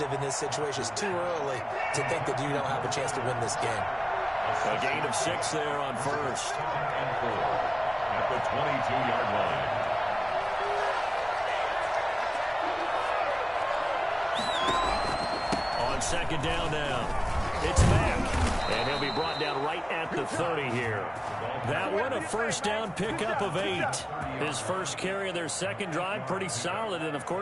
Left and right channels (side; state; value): both; identical; correlation 1.00